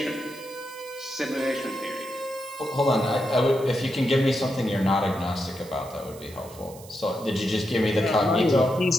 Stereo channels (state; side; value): noise; right; hiss, 20 dB below the sound